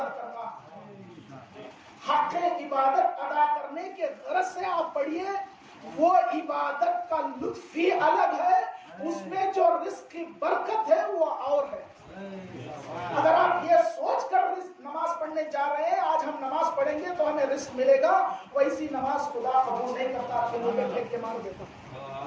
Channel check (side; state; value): both; identical; correlation 1.00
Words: کرنا، حق عبادت ادا کرنے کے غرض سے آپ پڑھیے. وہ عبادت کا لطف ہی الگ ہے، اس میں جو رزق کی برکت ہے وہ اور ہے. اگر آپ یہ سوچ کر نماز پڑھنے جا رہے ہیں آج ہم نماز پڑھیں گے تو ہمیں رزق ملے گا، ویسی نماز خدا قبول نہیں کرتا، کھلوں میں پھینک کے مار دیتا.